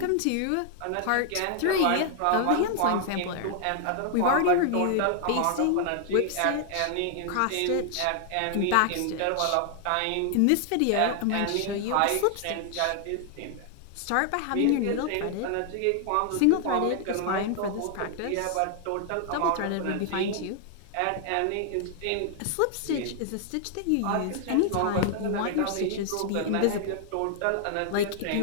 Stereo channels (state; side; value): different; both; correlation 0.00